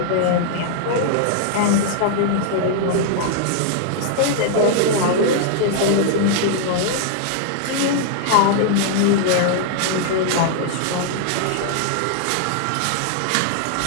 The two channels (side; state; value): both; different; correlation -0.01